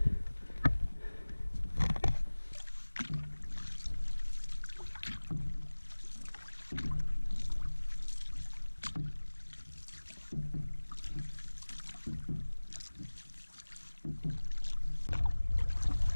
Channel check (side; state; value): both; inverted; correlation -1.00